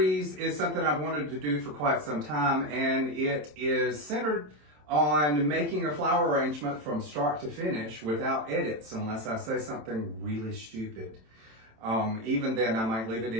is something I've wanted to do for quite some time, and it is centered on making a flower arrangement from start to finish without edits, unless I say something really stupid. Even then, I might leave it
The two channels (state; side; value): late; left; 27 ms